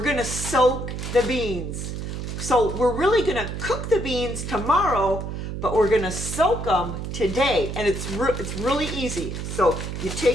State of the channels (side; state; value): right; noise; hum, 6 dB below the sound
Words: gonna soak the beans. So we're really gonna cook the beans tomorrow, but we're gonna soak them today. And it's really easy. So you